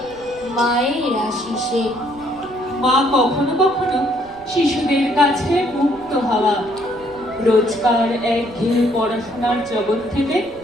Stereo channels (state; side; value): noise; right; rumble, 24 dB below the sound